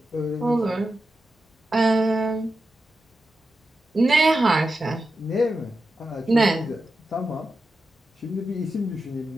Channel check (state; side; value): normal; both; correlation 0.90